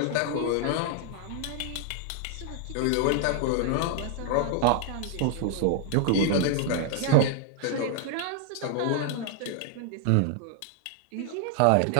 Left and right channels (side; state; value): both; different; correlation 0.00